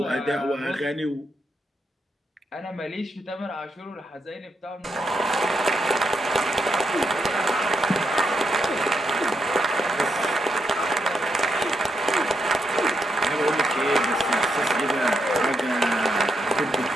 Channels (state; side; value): normal; both; correlation 0.81